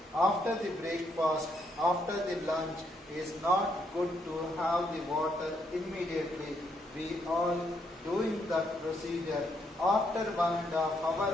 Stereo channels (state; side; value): normal; both; correlation 0.75